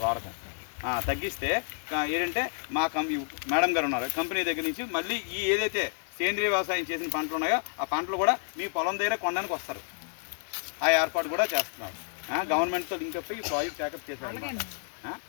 వాడకం. తగ్గిస్తే ఏంటంటే మా మేడం గారు ఉన్నారు కంపెనీ దగ్గర నుంచి మళ్ళీ ఈ ఏదైతే సేంద్రీయ వ్యవసాయం చేసిన పంటలు ఉన్నాయో ఆ పంటలు కూడా మీ పొలం దగ్గర కొనడానికి వస్తారు. ఆ ఏర్పాటు కూడా చేస్తున్నారు. గవర్నమెంట్తో లింక్ అప్ ఈ ప్రాజెక్ట్ టేకప్ చేశారు.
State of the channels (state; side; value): silent; right; digital silence